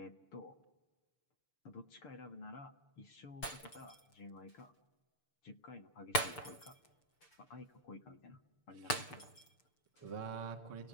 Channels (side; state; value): right; late; 6.8 ms